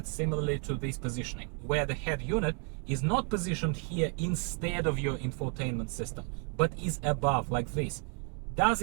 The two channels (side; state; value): left; quieter; 39.6 dB